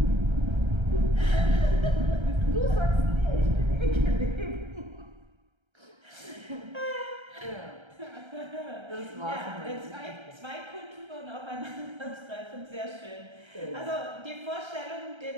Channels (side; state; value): left; late; 1.3 ms